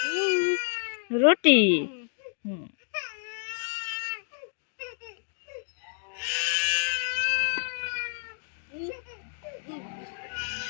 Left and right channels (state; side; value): silent; right; digital silence